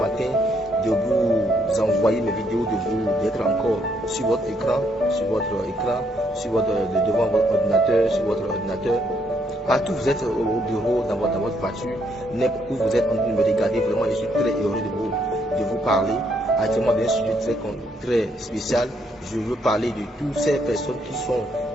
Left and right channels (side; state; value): both; normal; correlation 0.72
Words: de vous envoyer mes vidéos, d'être encore sur votre écran, devant votre ordinateur, sur votre ordinateur. Partout vous êtes au bureau, dans votre voiture, n'importe où vous êtes en train de me regarder, vraiment je suis très heureux de vous parler. Actuellement d'un sujet très spécial. Je veux parler de toutes ces personnes qui sont